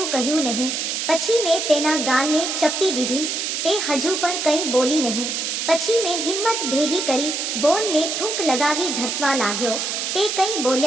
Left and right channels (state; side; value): noise; right; hiss, 2 dB below the sound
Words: કહ્યું નહીં. પછી મેં તેના ગાલને ચપટી દીધી. તે હજુ પણ કંઈ બોલી નહીં. પછી મેં હિંમત ભેગી કરી, બોલને થૂંક લગાવી ધસવા લાગ્યો. તે કંઈ